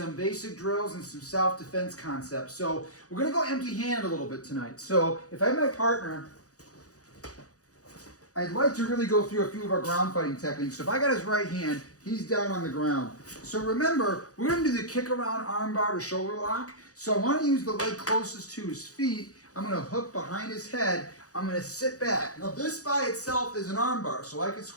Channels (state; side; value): late; right; 0.66 ms